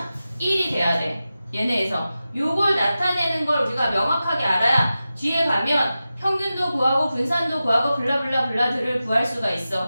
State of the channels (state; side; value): inverted; both; correlation -0.93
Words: 1이 돼야 돼. 얘네에서. 요걸 나타내는 걸 우리가 명확하게 알아야 뒤에 가면 평균도 구하고 분산도 구하고 블라블라블라들을 구할 수가